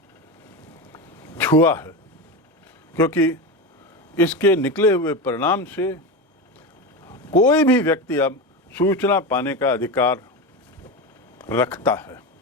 छुआ है, क्योंकि इसके निकले हुए परिणाम से कोई भी व्यक्ति अब सूचना पाने का अधिकार रखता है।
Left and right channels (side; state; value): both; normal; correlation 0.20